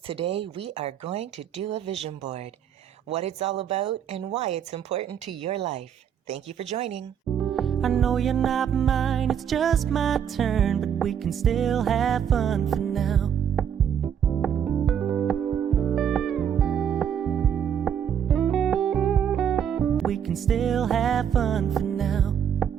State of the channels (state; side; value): quieter; left; 8.5 dB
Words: today we are going to do a vision board. What it's all about and why it's important to your life. Thank you for joining. I know you're not mine, it's just my turn, but we can still have fun for now. We can still have fun for now.